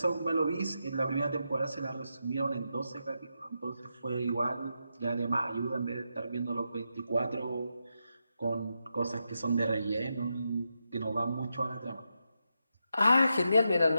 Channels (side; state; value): both; inverted; correlation -0.86